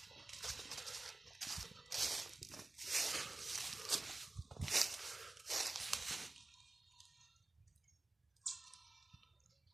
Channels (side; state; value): left; quieter; 3.1 dB